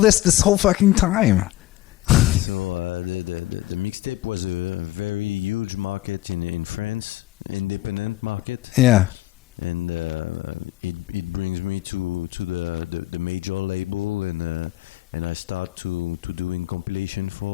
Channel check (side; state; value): right; quieter; 17.0 dB